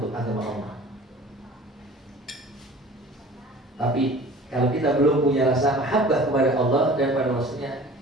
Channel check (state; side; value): normal; both; correlation 0.45